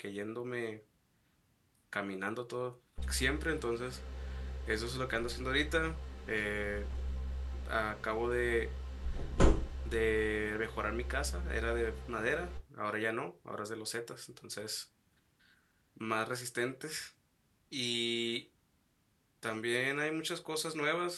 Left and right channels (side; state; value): both; identical; correlation 1.00